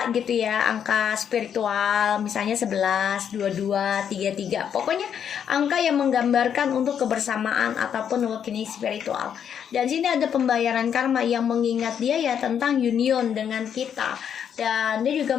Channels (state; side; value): quieter; right; 8.4 dB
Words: gitu ya, angka spiritual misalnya 11, 22, 33. Pokoknya angka yang menggambarkan untuk kebersamaan ataupun awakening spiritual. Dan sini ada pembayaran karma yang mengingat dia ya tentang union dengan kita. Dan dia juga